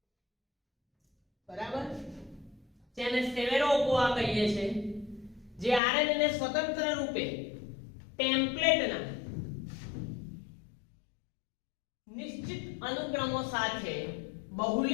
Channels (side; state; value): right; drops out; at 5.8 s